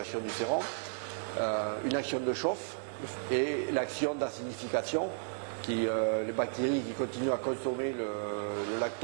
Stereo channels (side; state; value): left; silent; digital silence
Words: du sérum. Une action de chauffe et l'action d'acidification, les bactéries qui continuent à consommer le